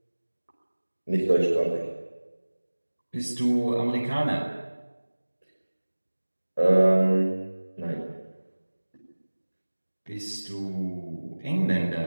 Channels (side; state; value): both; inverted; correlation -1.00